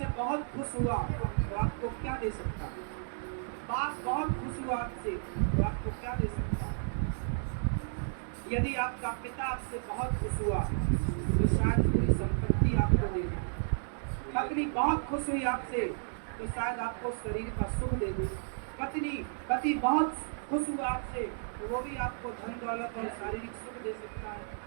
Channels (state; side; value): silent; left; digital silence